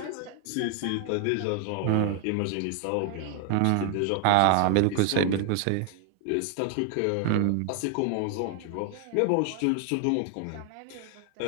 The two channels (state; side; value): different; both; correlation 0.00